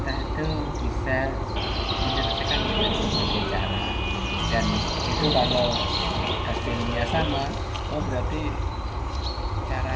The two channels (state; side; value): identical; both; correlation 1.00